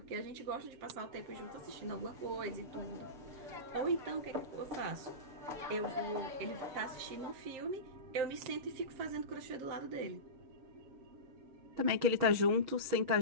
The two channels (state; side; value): late; left; 6.4 ms